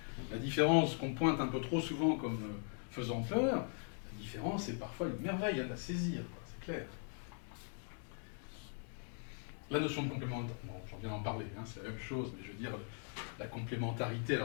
La différence qu'on pointe un peu trop souvent comme faisant peur, la différence est parfois une merveille à la saisir, c'est clair. La notion de complémentarité, bon, j'en viens d'en parler, hein, c'est la même chose, mais je veux dire, la complémentarité,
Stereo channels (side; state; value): right; silent; 51 dB below the other